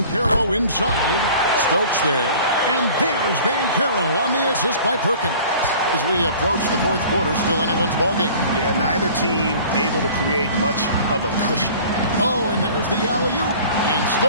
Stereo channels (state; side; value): inverted; both; correlation -0.46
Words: inside. Stokes there. And there's Banchero on the assist by Perkins. As we approach the 4th quarter, still anyone's ballgame. Yeah, neither team able to create much of a cushion. Oh, and there's the alley-oop. And